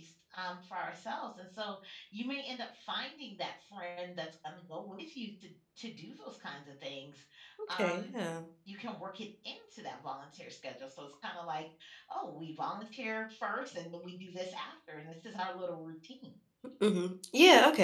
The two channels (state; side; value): identical; both; correlation 1.00